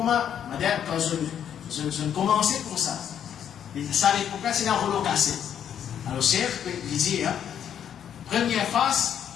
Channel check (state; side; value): quieter; right; 9.2 dB